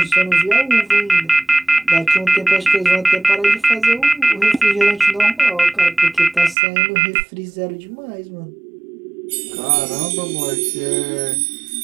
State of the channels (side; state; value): left; drops out; at 6.6 s